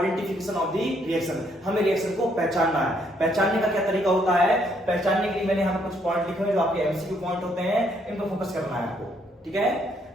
ऑफ द रिएक्शन। हमें रिएक्शन को पहचानना है। पहचानने का क्या तरीका होता है, पहचानने के लिए मैंने यहाँ पर कुछ पॉइंट लिखे हुए जो आपके एमसीक्यू पॉइंट होते हैं, इन पर फोकस करना है आपको। ठीक है,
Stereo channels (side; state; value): both; normal; correlation 0.70